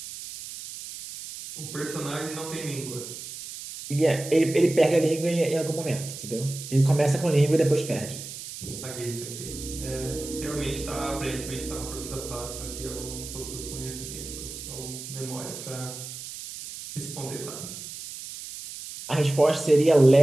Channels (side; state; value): right; noise; hiss, 10 dB below the sound